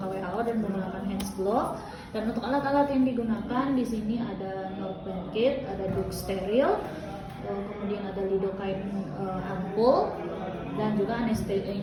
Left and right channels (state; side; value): identical; both; correlation 1.00